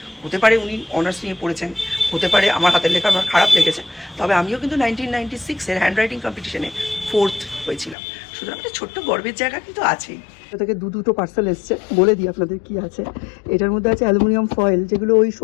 হতে পারে উনি অনার্স নিয়ে পড়েছেন, হতে পারে আমার হাতের লেখা আমার খারাপ লেগেছে, তবে আমিও কিন্তু 1996-এর হ্যান্ডরাইটিং কম্পিটিশনে 4th হয়েছিলাম। সুতরাং একটা ছোট্ট গর্বের জায়গা কিন্তু আছেই। এটা থেকে দুটো পার্সেল এসছে, বলে দিই আপনাদের কি আছে। এটার মধ্যে আছে অ্যালুমিনিয়াম ফয়েল, যেগুলো ওই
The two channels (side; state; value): right; drops out; at 8.0 s